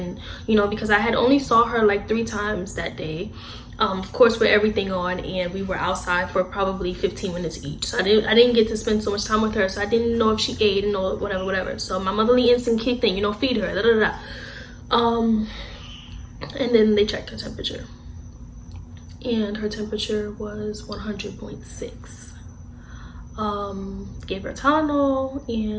you know, because I had only saw her like 3 times that day. Of course, with everything on, and we were outside for probably 15 minutes each. So I didn't get to spend so much time with her, so I didn't know if she ate and know whatever. So my motherly instinct kicked in, you know, feed her, da da da. And then they checked her temperature, and her temperature was 100.6. Gave her Tylenol,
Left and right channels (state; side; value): identical; both; correlation 1.00